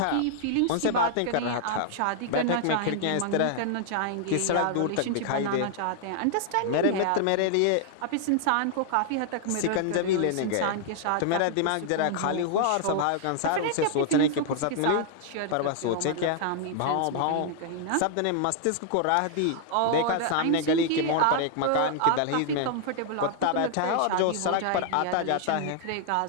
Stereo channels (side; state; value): both; different; correlation 0.00